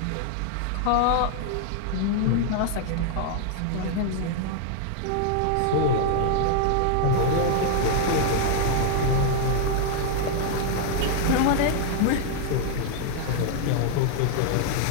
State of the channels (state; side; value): different; both; correlation 0.00